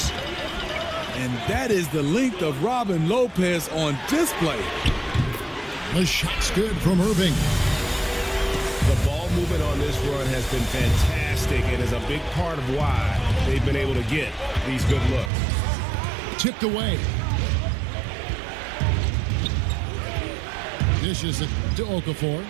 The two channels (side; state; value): left; drops out; at 15.3 s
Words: And that is the length of Robin Lopez on display. The shot's good from Irving. The ball movement on this run has been fantastic and is a big part of why they've been able to get these good looks. Tipped away. Dishes it to Okafor.